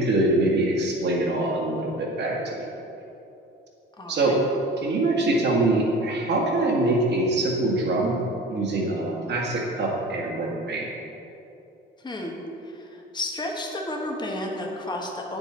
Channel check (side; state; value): both; normal; correlation 0.38